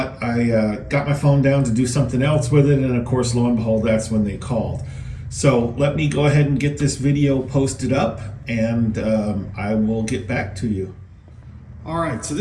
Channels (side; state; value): both; identical; correlation 1.00